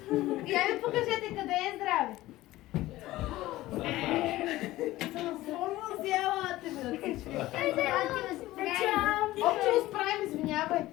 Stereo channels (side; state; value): right; quieter; 16.8 dB